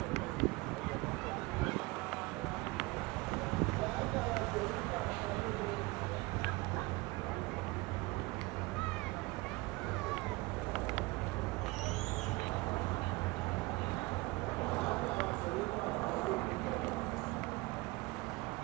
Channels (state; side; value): quieter; left; 23.1 dB